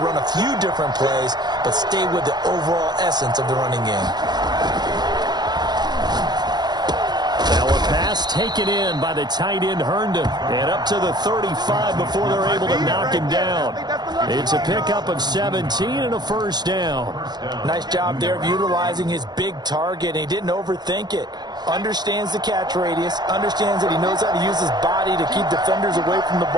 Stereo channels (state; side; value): late; left; 0.20 ms